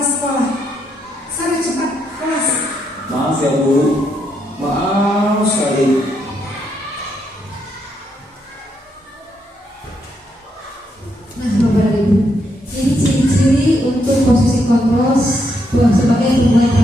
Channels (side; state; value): both; normal; correlation 0.78